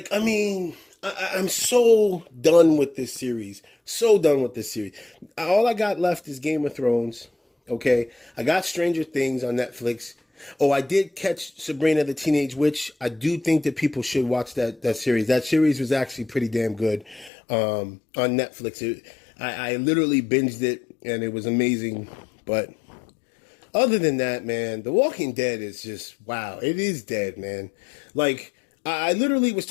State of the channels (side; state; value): right; drops out; at 17.3 s